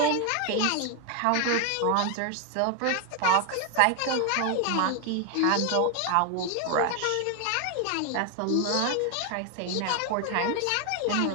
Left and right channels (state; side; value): different; both; correlation 0.01